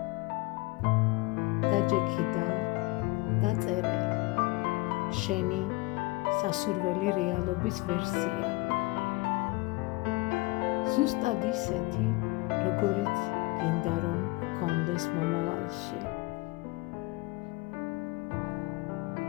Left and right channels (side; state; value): right; quieter; 23.2 dB